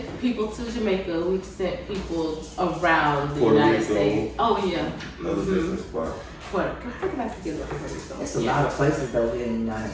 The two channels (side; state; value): both; identical; correlation 1.00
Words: people to Jamaica. We've sent people around the Puerto United Rico. States. Oh, yeah. Another business spot. How did I forget about Puerto Rico? There's a lot of places though here in the